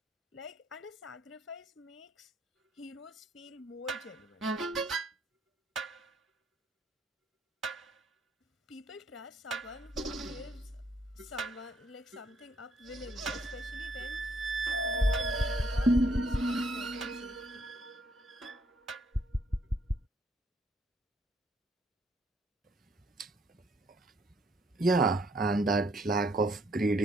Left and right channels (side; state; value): both; normal; correlation 0.68